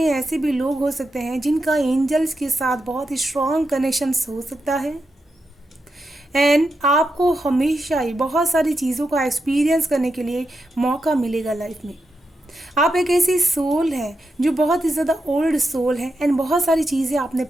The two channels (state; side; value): normal; both; correlation 0.86